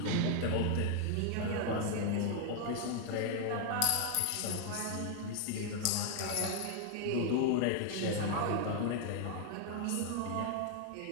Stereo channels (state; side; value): different; both; correlation 0.00